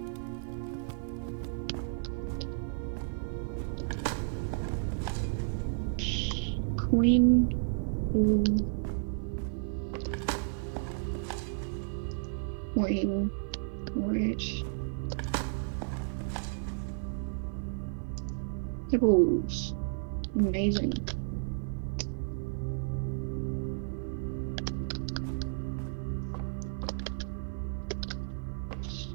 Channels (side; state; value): left; silent; digital silence